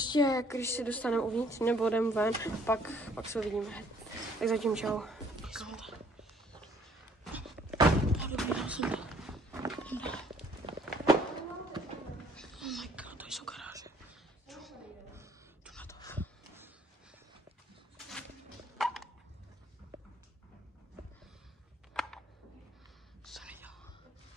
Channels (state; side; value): normal; both; correlation 0.61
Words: když si dostaneme uvnitř, nebo jdeme ven, pak se uvidíme. Tak zatím čau.